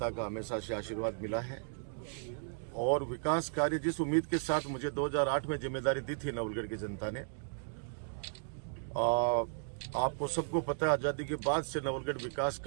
का हमेशा से आशीर्वाद मिला है और विकास कार्य जिस उम्मीद के साथ मुझे 2008 में जिम्मेदारी दी थी नवलगढ़ की जनता ने, आपको सबको पता है आज़ादी के बाद से नवलगढ़ विकास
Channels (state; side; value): silent; left; digital silence